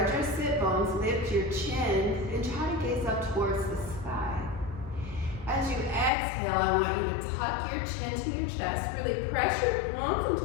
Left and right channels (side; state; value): right; drops out; at 6.1 s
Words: your sit bones, lift your chin, and try to gaze up towards the sky. As you exhale, I want you to tuck your chin to your chest, really press your palms into